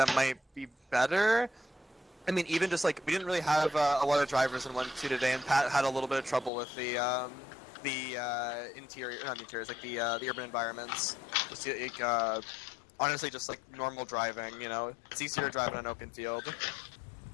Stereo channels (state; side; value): drops out; right; at 6.5 s